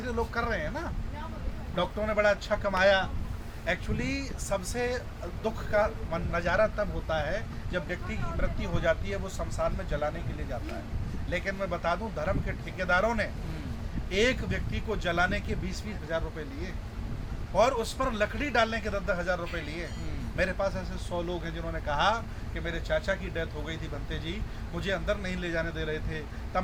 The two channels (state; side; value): identical; both; correlation 1.00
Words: लोग कर रहे हैं ना। डॉक्टरों ने बड़ा अच्छा कमाया। एक्चुअली सबसे दुख का नज़ारा तब होता है जब व्यक्ति की मृत्यु हो जाती है, वो शमशान में जलाने के लिए जाता है। लेकिन मैं बता दूं, धर्म के ठेकेदारों ने एक व्यक्ति को जलाने के 20-20 हज़ार रुपये लिए, और उस पर लकड़ी डालने के 10-10 हज़ार रुपये लिए। मेरे पास ऐसे 100 लोग हैं जिन्होंने कहा कि मेरे चाचा की डेथ हो गई थी बनते जी, मुझे अंदर नहीं ले जाने दे रहे थे, तब